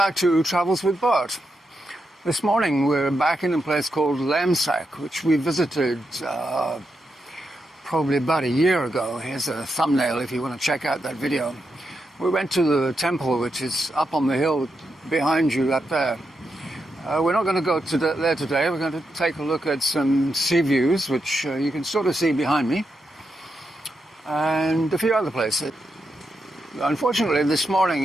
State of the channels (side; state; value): both; normal; correlation 0.85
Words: to Travels with Bert. This morning we're back in a place called Laem Sak, which we visited probably about a year ago. Here's a thumbnail if you want to check out that video. We went to the temple, which is up on the hill behind you up there. We're not going to go to there today. We're going to take a look at some sea views, which you can sort of see behind me, and a few other places. Unfortunately, this morning